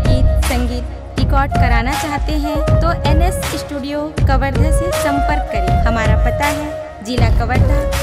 गीत संगीत रिकॉर्ड कराना चाहते हैं तो NS स्टूडियो कवर्धा से संपर्क करें। हमारा पता है जिला कवर्धा,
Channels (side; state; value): both; identical; correlation 1.00